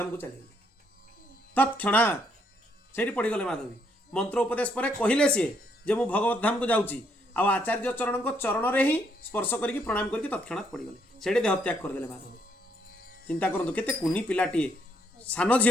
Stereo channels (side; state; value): both; normal; correlation 0.72